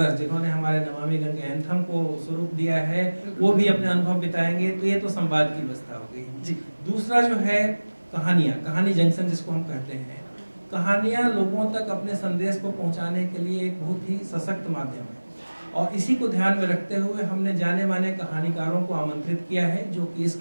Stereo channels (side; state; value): both; inverted; correlation -1.00